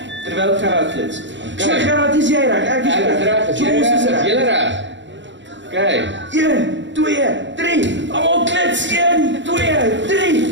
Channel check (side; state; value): left; late; 0.54 ms